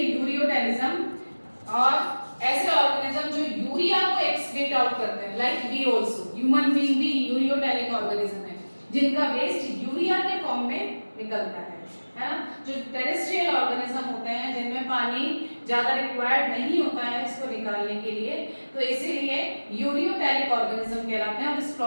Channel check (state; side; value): inverted; both; correlation -1.00